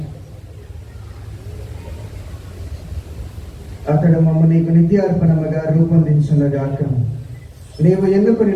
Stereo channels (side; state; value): both; identical; correlation 1.00